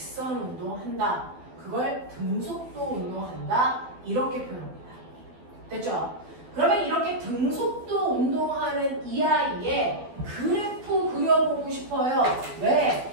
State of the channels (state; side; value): late; left; 12 ms